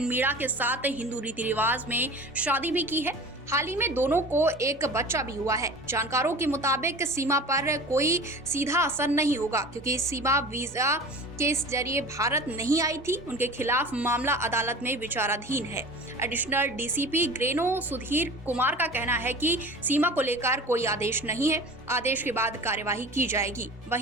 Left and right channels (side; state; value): both; normal; correlation 0.38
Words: मीणा के साथ हिंदू रीति रिवाज में शादी भी की है। हाल ही में दोनों को एक बच्चा भी हुआ है। जानकारों के मुताबिक सीमा पर कोई सीधा असर नहीं होगा, क्योंकि सीमा वीजा के जरिए भारत नहीं आई थी। उनके खिलाफ मामला अदालत में विचाराधीन है। एडिशनल डीसीपी ग्रेनो सुधीर कुमार का कहना है कि सीमा को लेकर कोई आदेश नहीं है, आदेश के बाद कार्यवाही की जाएगी।